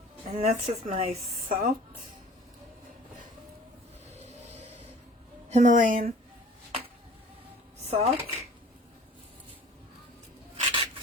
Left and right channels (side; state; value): both; normal; correlation 0.47